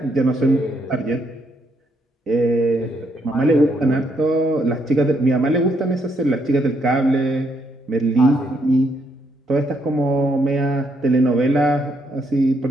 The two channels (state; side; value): normal; both; correlation 0.75